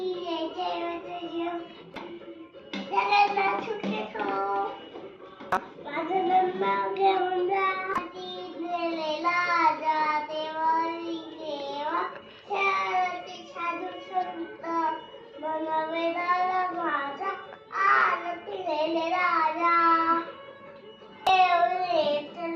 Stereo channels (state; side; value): identical; both; correlation 1.00